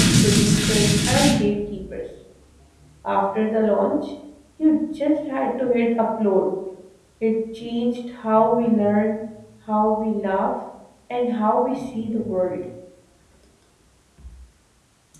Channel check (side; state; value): both; identical; correlation 1.00